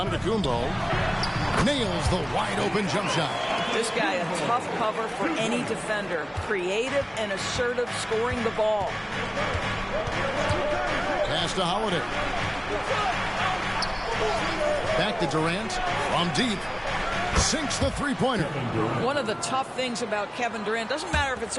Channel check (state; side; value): identical; both; correlation 1.00